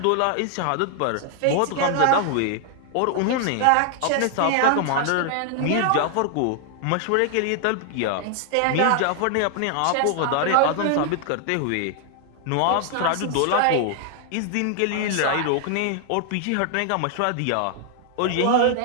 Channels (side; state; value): both; different; correlation 0.00